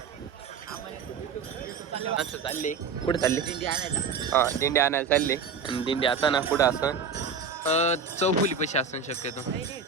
असं चालले कुठे चालले? दिंडी आणायला. हा दिंडी आणायला चालले. आणि दिंडी आता ना कुठं असं चौफुली पैसे असून शक्यतो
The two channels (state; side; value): quieter; left; 5.5 dB